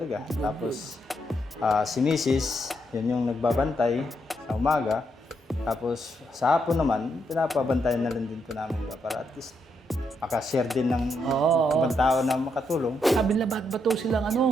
Tapos, si Mrs., yun yung nagbabantay sa umaga. Tapos, sa hapon naman, pinapabantayan na rin din po namin ba para at least makashare din ng ibang tao na makatulong. Sabi nila, ba't silang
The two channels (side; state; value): both; normal; correlation 0.79